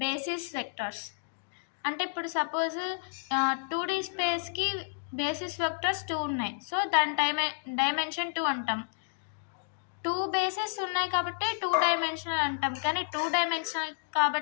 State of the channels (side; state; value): right; silent; digital silence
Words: basis vectors. అంటే ఇప్పుడు సపోజ్ 2D స్పేస్కి బేసిస్ వెక్టార్స్ 2 ఉన్నాయి, సో దాని డైమెన్షన్ 2 అంటాం. 2 బేసిస్ ఉన్నాయి కాబట్టి 2 డైమెన్షనల్ అంటాం, కానీ 2 డైమెన్షనల్